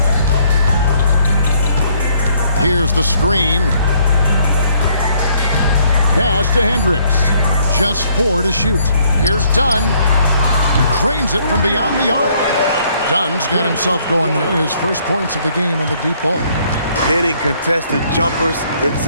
Here's the screen. Pass to Hendricks. Just 4 to shoot. Here's Dunn. Cranes it from beyond the arc. Dunn's got himself going there. His first points of the game on the deep ball. Hitting contested jumpers, it's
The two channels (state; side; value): inverted; both; correlation -0.65